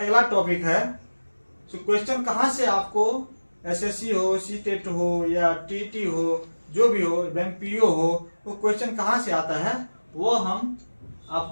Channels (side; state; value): both; inverted; correlation -1.00